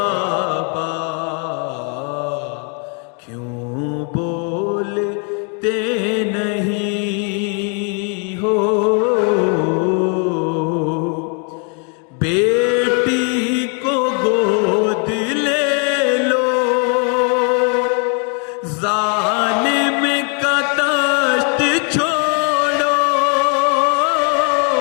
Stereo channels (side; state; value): right; quieter; 39.1 dB